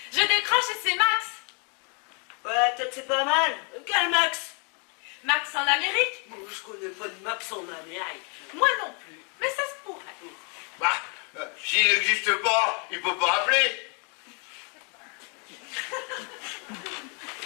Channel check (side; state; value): right; quieter; 36.0 dB